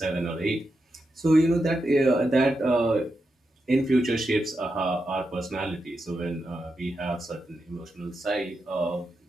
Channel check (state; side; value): normal; both; correlation 0.87